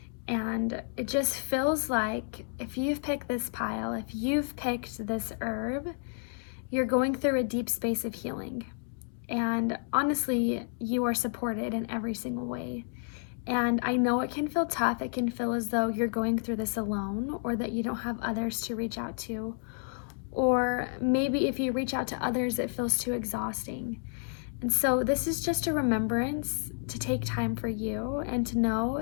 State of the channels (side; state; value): right; silent; 57 dB below the other